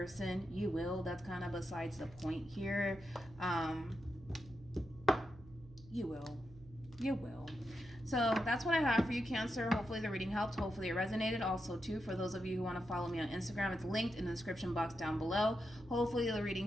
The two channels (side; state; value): right; noise; hum, 20 dB below the sound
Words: You will. That's kind of besides the point here. You will. So that's what I have for you, Cancer. Hopefully the reading helped. Hopefully it resonated. Also, too, for those of you who want to follow me on Instagram, it's linked in the description box down below. Hopefully the reading